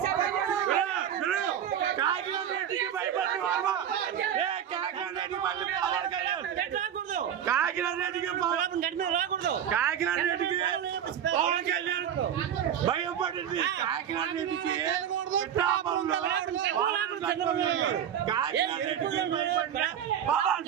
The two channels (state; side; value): quieter; left; 9.3 dB